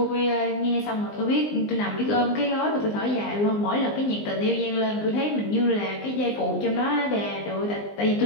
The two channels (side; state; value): right; late; 19 ms